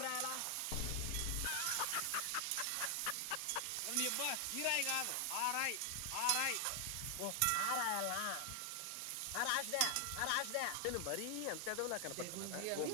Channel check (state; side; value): different; both; correlation 0.00